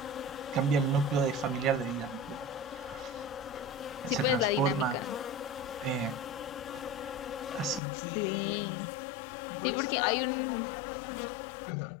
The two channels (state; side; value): drops out; right; at 7.8 s